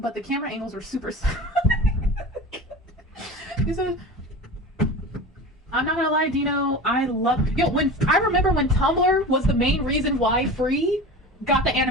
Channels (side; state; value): both; normal; correlation 0.33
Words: the camera angles were super. I'm not gonna lie, Dino. I remember when Tumblr was the main reason why Free got the